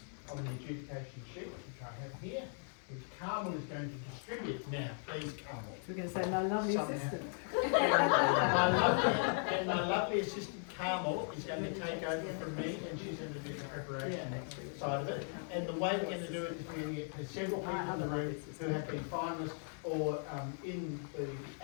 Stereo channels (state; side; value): silent; right; 53 dB below the other